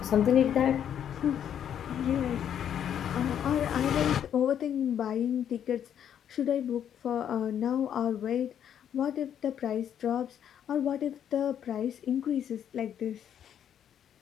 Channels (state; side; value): quieter; right; 9.4 dB